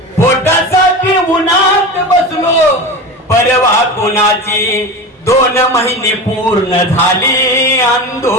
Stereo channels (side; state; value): both; normal; correlation 0.28